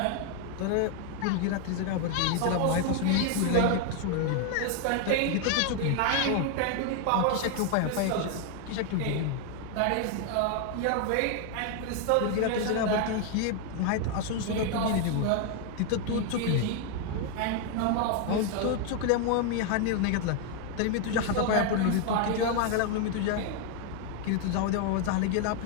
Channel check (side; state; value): both; different; correlation 0.00